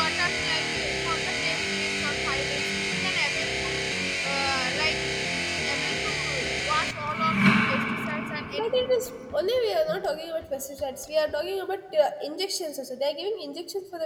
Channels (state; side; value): identical; both; correlation 1.00